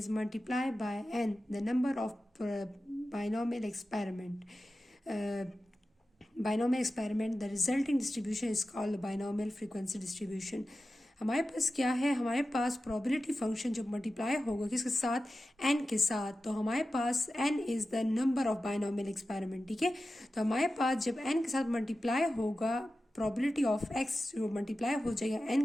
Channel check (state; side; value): normal; both; correlation 0.93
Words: multiply by n the number of binomial experiment the resulting distribution is called binomial frequency distribution. हमारे पास क्या है, हमारे पास प्रोबेबिलिटी फंक्शन जब multiply होगा किसके साथ, n के साथ, तो हमारे पास n is the number of binomial experiment. ठीक है, तो हमारे पास जब n के साथ मल्टीप्लाई होगा प्रोबेबिलिटी ऑफ x जो मल्टीप्लाई हो जाएगा